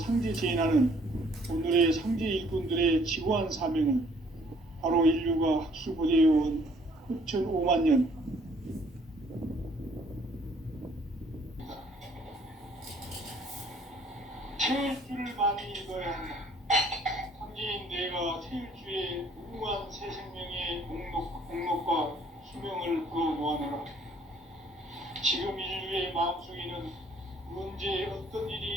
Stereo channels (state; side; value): normal; both; correlation 0.61